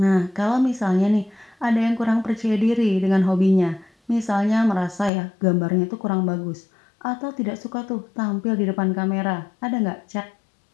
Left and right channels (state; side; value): drops out; right; at 5.1 s